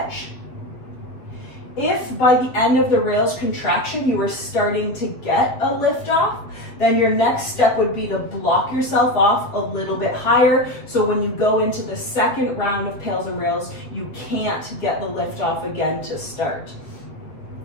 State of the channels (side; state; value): right; late; 7.4 ms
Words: If by the end of the rails contraction you were starting to get a lift off, then your next step would be to block yourself off a little bit higher. So when you go into the second round of pails and rails, you can't get the lift off again to start.